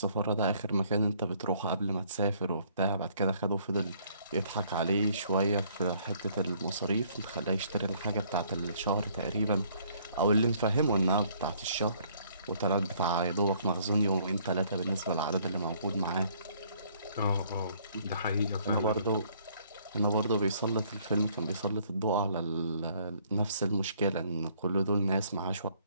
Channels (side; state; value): both; inverted; correlation -0.63